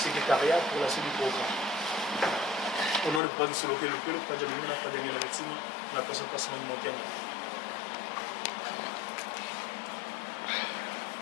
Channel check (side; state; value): right; drops out; at 3.2 s